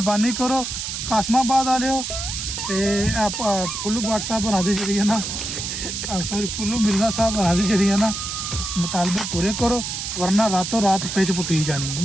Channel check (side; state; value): right; noise; hiss, 5 dB below the sound